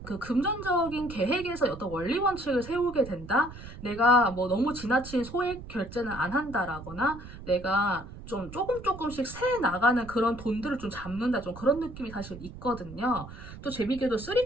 그 금전적인 계획에서 어떤 원리 원칙을 세우게 된다? 내가 뭐 너무 지나친 소액 결제는 안 한다라거나 내가 좀 조금씩 새 나가는 그런 돈들을 좀 잡는다 좀 그런 느낌이 사실 있거든요. 또 재밌게도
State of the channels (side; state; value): right; noise; rumble, 13 dB below the sound